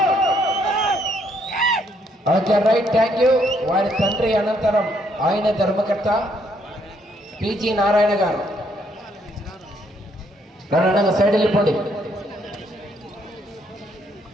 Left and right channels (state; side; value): normal; both; correlation 0.70